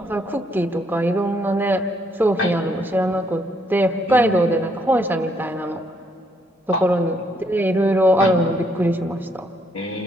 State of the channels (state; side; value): normal; both; correlation 0.72